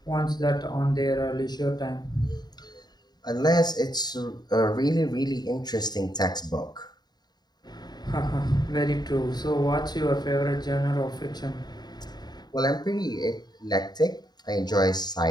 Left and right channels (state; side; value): late; right; 0.20 ms